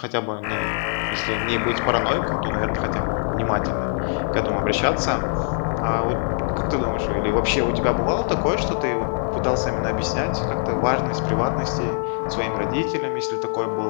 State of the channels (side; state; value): right; silent; 63 dB below the other